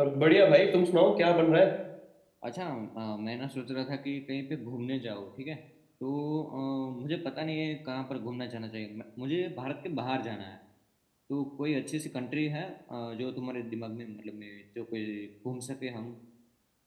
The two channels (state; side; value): identical; both; correlation 1.00